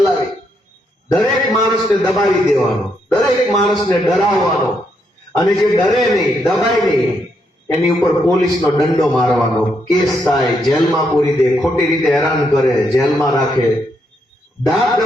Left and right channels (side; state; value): both; normal; correlation 0.78